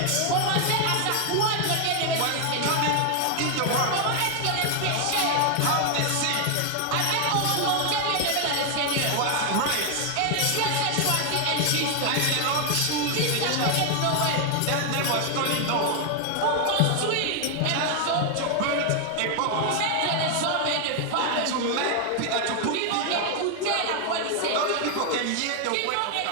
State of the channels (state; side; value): different; both; correlation 0.00